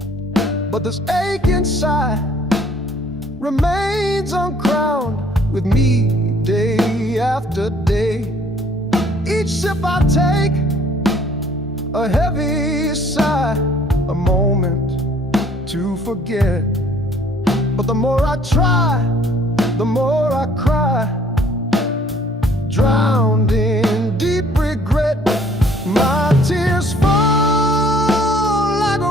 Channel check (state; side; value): normal; both; correlation 0.59